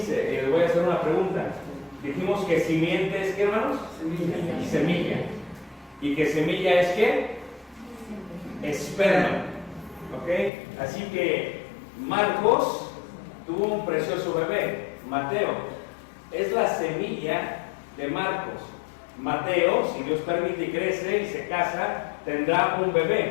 Y les voy a hacer una pregunta. Dijimos que simiente es, ¿qué, hermanos? Semilla. ¿Y que semilla es qué? Esperma. ¿Ok? Así que Marcos tuvo un precioso bebé, Mateo. Es la semilla de Marcos. Mateo, si Dios permite y crece y se casa, tendrá un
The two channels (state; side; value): drops out; right; at 10.5 s